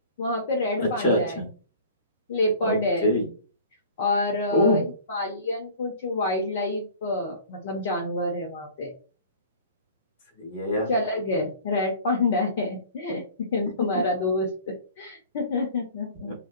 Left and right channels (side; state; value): both; inverted; correlation -0.44